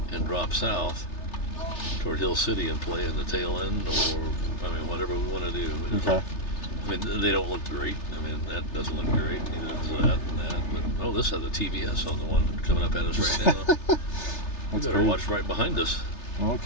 and drop south toward Hill City and play in the tail end, or I mean whatever we want to do. Okay. I mean they don't look great. I mean that doesn't look great. Neither does that and that. But oh, this has a TVS on the one coming up at us right now. We better great. watch right behind us. Well,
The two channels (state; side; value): late; right; 3.3 ms